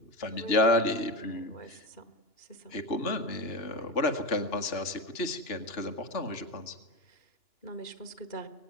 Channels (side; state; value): right; late; 2.9 ms